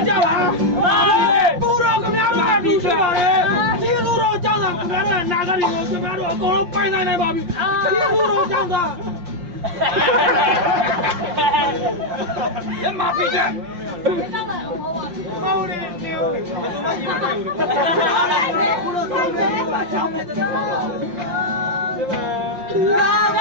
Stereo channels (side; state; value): left; late; 5.7 ms